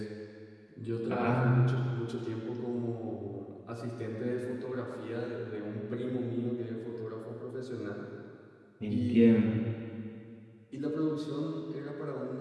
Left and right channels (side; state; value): both; identical; correlation 1.00